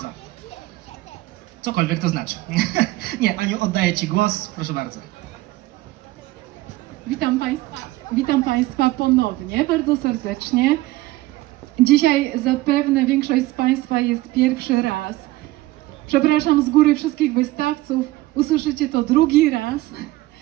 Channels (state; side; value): quieter; left; 18.2 dB